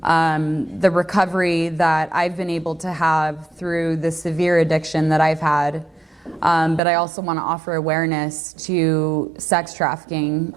the recovery that I've been able to have through the severe addiction that I've had. But I also want to offer awareness to sex trafficking,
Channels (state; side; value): drops out; left; at 6.8 s